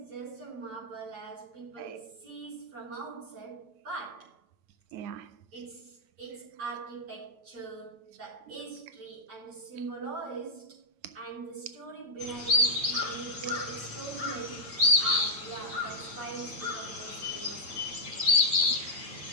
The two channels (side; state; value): left; late; 9.1 ms